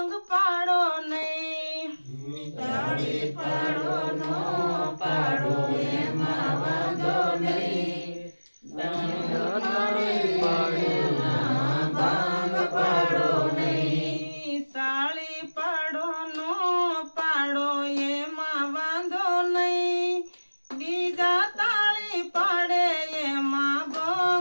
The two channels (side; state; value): both; inverted; correlation -1.00